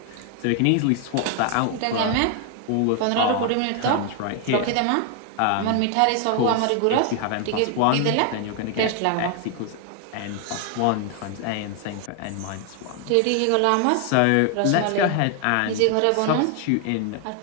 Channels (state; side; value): different; both; correlation 0.00